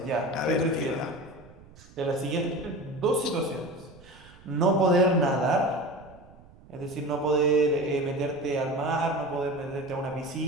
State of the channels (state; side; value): noise; right; rumble, 23 dB below the sound